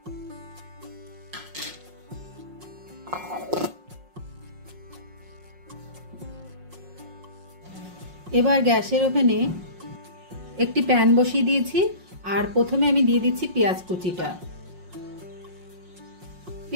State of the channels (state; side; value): late; left; 5.5 ms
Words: এবার গ্যাসের ওভেনে একটি প্যান বসিয়ে দিয়েছি আর প্রথমে আমি দিয়ে দিচ্ছি পেঁয়াজ কুচিটা।